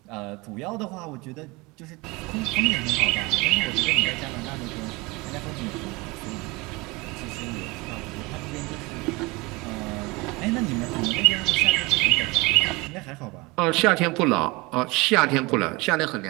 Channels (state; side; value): quieter; left; 24.4 dB